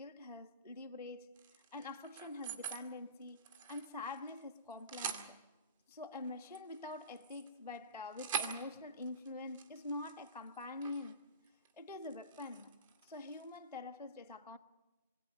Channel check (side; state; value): both; inverted; correlation -0.32